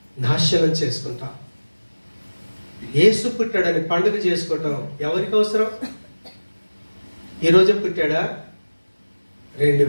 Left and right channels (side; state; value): both; inverted; correlation -1.00